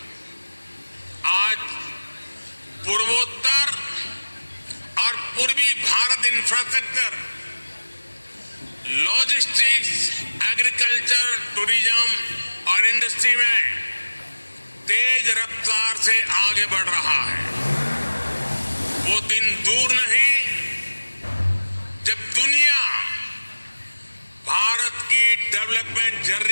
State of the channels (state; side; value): inverted; both; correlation -1.00